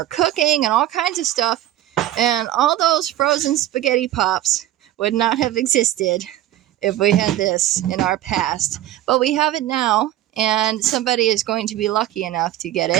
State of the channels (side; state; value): left; quieter; 13.7 dB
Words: cooking and all kinds of stuff. And all those frozen spaghetti pops would not have existed if we had this in our past. But we have it now. And somebody is going to be lucky enough to get